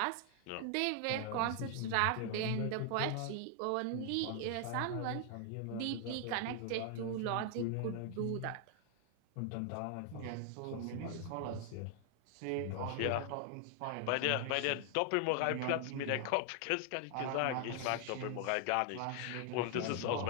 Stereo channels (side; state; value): both; different; correlation 0.00